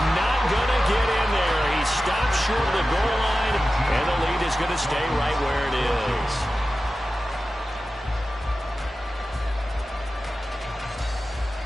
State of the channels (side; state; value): both; normal; correlation 0.94